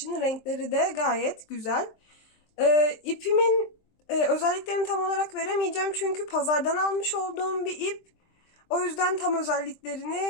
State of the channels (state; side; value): late; right; 23 ms